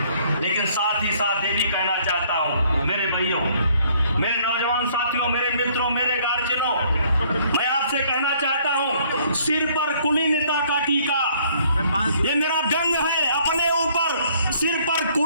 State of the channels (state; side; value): inverted; both; correlation -0.62